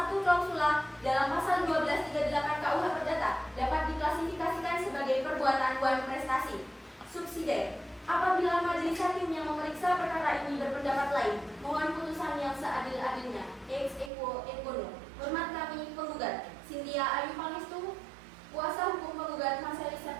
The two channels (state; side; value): drops out; left; at 14.1 s